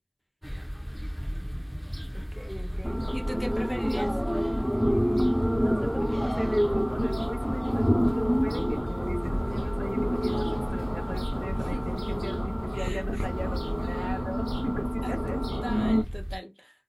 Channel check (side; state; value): both; identical; correlation 1.00